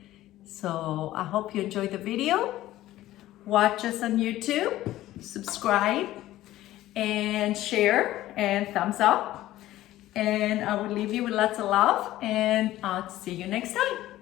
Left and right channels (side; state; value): right; quieter; 15.1 dB